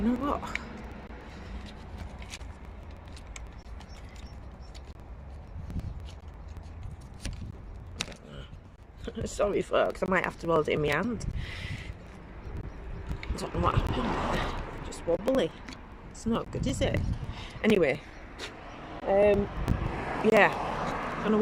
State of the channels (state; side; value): identical; both; correlation 1.00